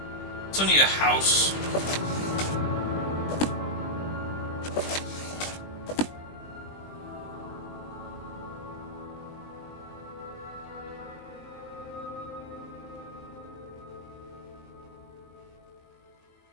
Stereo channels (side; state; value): right; late; 20 ms